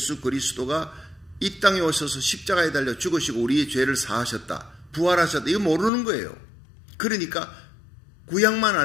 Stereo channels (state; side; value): drops out; right; at 5.9 s